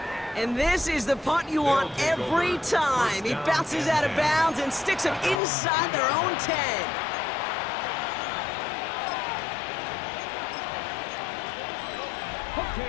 And this is the punt you want every time. He bounces out of bounds and sticks them inside their own 10.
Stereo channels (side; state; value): right; drops out; at 5.4 s